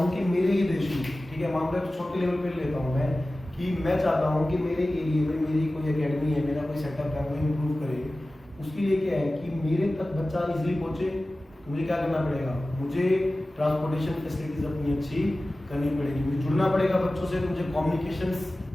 कि मेरे ही देश में, ठीक है, मान लो छोटे लेवल पे लेता हूँ मैं, कि मैं चाहता हूँ कि मेरे एरिया में मेरी कोई एकेडमी है, मेरा कोई सेटअप है, वो इम्प्रूव करे, उसके लिए क्या है कि मेरे तक बच्चा इजीली पहुँचे, तो मुझे क्या करना पड़ेगा, मुझे ट्रांसपोर्टेशन फैसिलिटीज अपनी अच्छी करनी पड़ेगी, मुझे जुड़ना पड़ेगा बच्चों से, मुझे कम्युनिकेशंस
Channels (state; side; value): normal; both; correlation 0.96